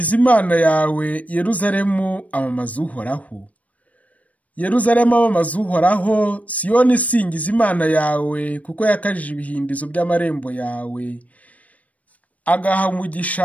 Imana yawe, Yeruzalemu amamaza uhoraho. Yeruzalemu amamaza uhoraho, Siyoni singiza Imana yawe, kuko yakajije ibihindizo by'amarembo yawe, agaha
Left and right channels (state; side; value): late; right; 0.068 ms